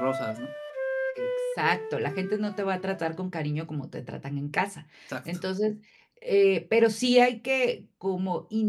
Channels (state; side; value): identical; both; correlation 1.00